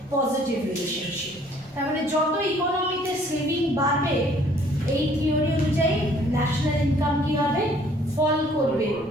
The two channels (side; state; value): both; normal; correlation 0.59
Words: পজিটিভ রিলেশনশিপ। তার মানে যত ইকোনমিতে সেভিং বাড়বে এই থিওরি অনুযায়ী ন্যাশনাল ইনকাম কি হবে? ফল করবে।